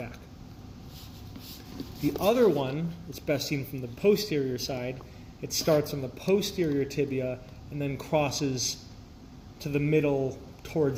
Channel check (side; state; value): both; identical; correlation 1.00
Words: The other one, it's best seen from the posterior side. It starts on the posterior tibia and then crosses to the middle